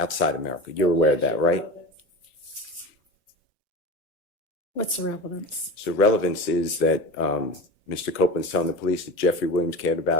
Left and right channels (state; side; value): normal; both; correlation 0.30